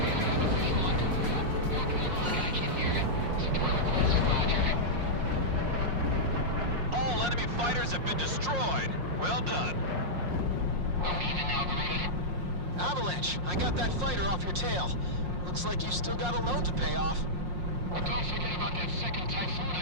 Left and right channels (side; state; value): left; late; 5.6 ms